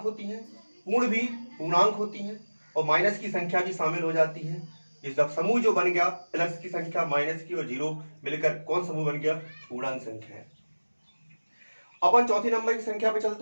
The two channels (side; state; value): both; inverted; correlation -1.00